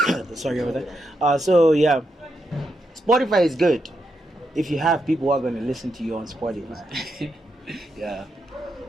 Sorry about that. So yeah, Spotify is good if you have people who are going to listen to you on Spotify. Yeah.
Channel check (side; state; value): both; normal; correlation 0.83